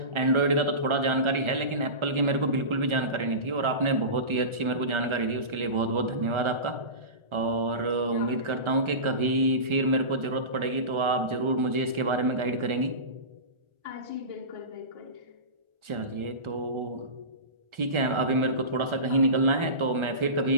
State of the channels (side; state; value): left; late; 1.4 ms